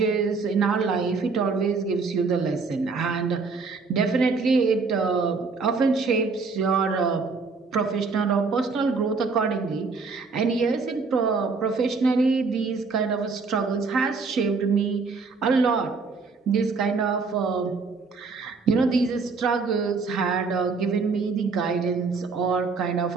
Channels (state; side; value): quieter; left; 4.5 dB